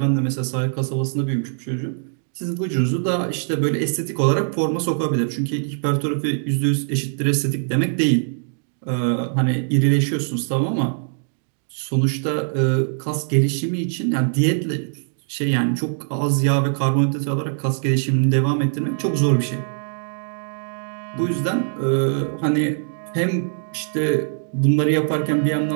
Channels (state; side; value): silent; left; digital silence